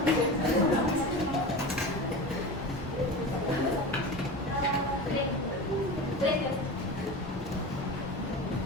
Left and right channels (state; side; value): normal; both; correlation 0.29